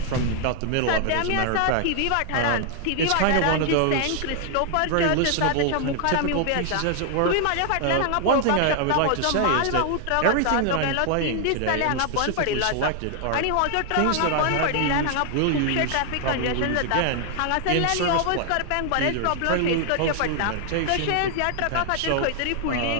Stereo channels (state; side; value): different; both; correlation 0.00